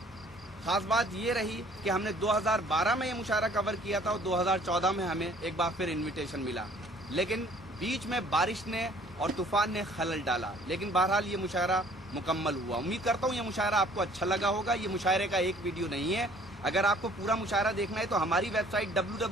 खास बात ये रही कि हमने 2012 में ये मुशायरा कवर किया था और 2014 में हमें एक बार फिर इनविटेशन मिला, लेकिन बीच में बारिश ने और तूफान ने खलल डाला। लेकिन बहरहाल ये मुशायरा मुकम्मल हुआ। उम्मीद करता हूँ ये मुशायरा आपको अच्छा लगा होगा। ये मुशायरे का एक वीडियो नहीं है। अगर आपको पूरा मुशायरा देखना है तो हमारी वेबसाइट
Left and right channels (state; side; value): normal; both; correlation 0.56